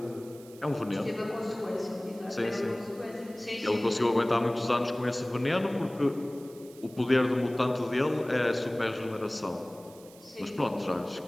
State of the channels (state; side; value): noise; right; hiss, 23 dB below the sound